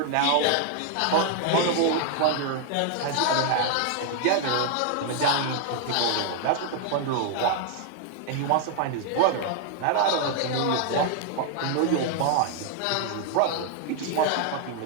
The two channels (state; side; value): different; both; correlation 0.00